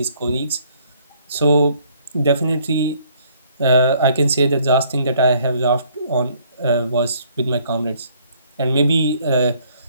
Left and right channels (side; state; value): both; inverted; correlation -0.63